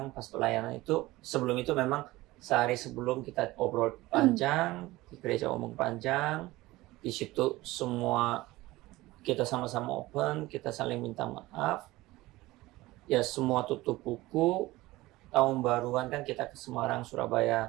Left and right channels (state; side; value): quieter; left; 18.9 dB